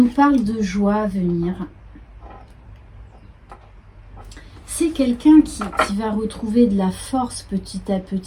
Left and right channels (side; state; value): both; identical; correlation 1.00